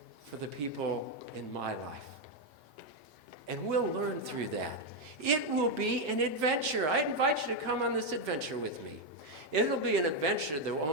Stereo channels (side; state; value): both; normal; correlation 0.03